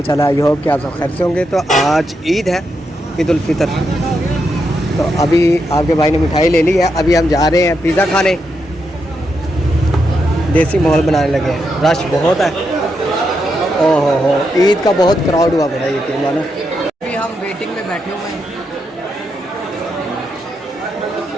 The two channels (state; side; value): normal; both; correlation 0.83